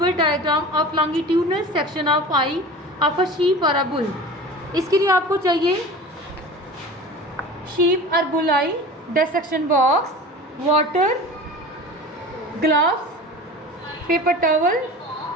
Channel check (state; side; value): normal; both; correlation 0.36